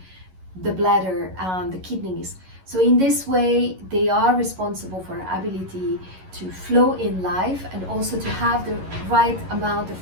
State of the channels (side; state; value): left; late; 11 ms